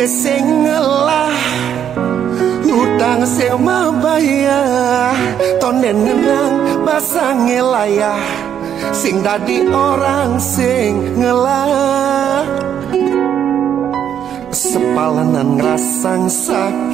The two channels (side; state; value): left; quieter; 9.2 dB